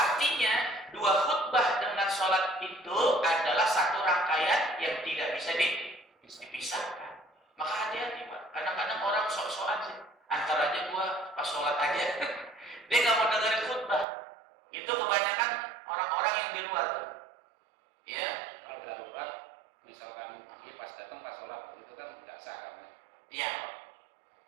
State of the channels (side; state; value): left; drops out; at 14.1 s